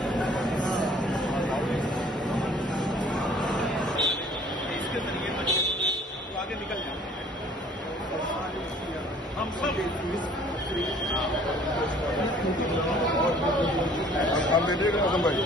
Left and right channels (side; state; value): both; normal; correlation 0.54